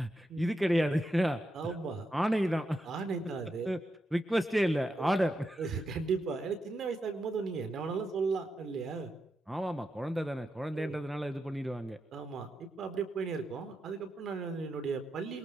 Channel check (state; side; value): normal; both; correlation 0.85